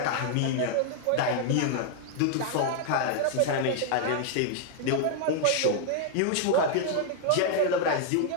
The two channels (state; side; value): different; both; correlation 0.00